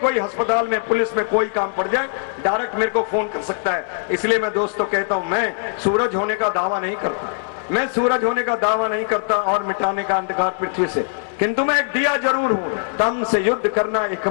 अस्पताल में, पुलिस में कोई काम पड़ जाए, डायरेक्ट मेरे को फोन कर सकता है। इसलिए मैं दोस्तों कहता हूं, मैं सूरज होने का दावा नहीं करता, मैं सूरज होने का दावा नहीं करता और मिटाने का अंधकार पृथ्वी से, किंतु मैं एक दिया जरूर हूं। दम से युद्ध करना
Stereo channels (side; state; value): right; silent; digital silence